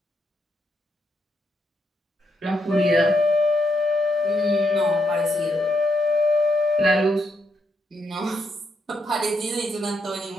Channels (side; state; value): both; normal; correlation 0.80